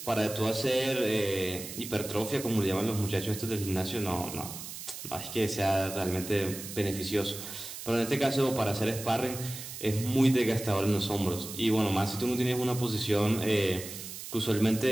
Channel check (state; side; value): noise; right; hiss, 10 dB below the sound